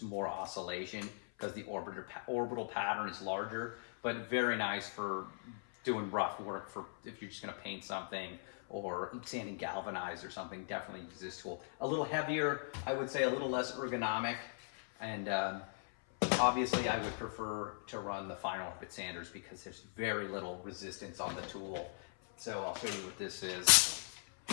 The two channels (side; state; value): right; silent; 52 dB below the other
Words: more oscillation because the orbital pattern is larger, but very nice for doing rough work, for if you're just gonna paint something or sanding galvanized or something. Definitely use this tool. A little heavier, I would say, a little less ergonomic, and obviously I would prefer to run the fine orbit sanders because there's very little resistance on the tool. So I'll show you what this is.